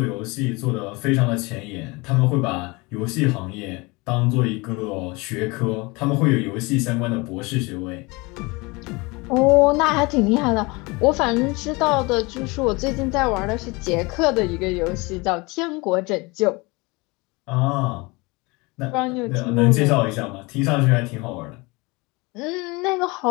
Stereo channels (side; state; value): right; quieter; 25.5 dB